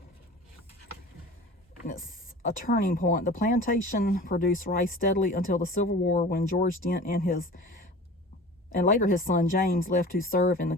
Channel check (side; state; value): both; normal; correlation 0.39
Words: And it's a turning point. The plantation produced rice steadily until the Civil War, when George Dent and later his son James left to serve in the